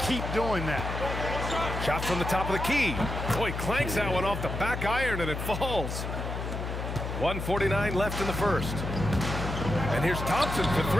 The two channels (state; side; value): noise; left; hum, 5 dB below the sound